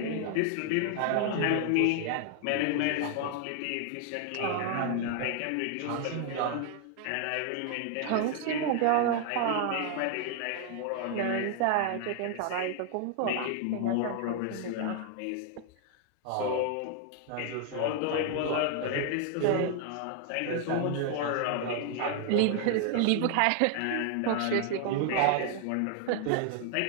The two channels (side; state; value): both; different; correlation 0.00